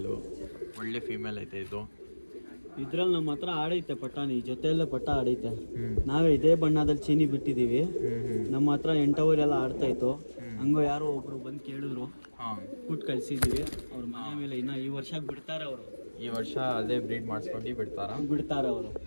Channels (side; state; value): both; inverted; correlation -1.00